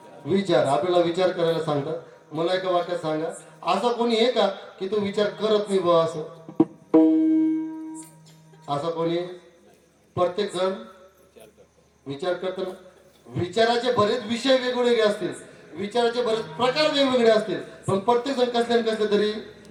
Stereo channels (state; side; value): identical; both; correlation 1.00